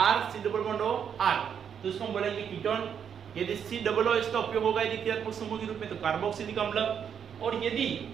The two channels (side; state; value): left; quieter; 7.9 dB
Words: C double bond O R, तो उसको हम बोलेंगे कीटोन। यदि C डबल O इसका उपयोग होगा यदि क्रियात्मक समूह के रूप में, तो कार्बोक्सिलिक अम्ल। और यदि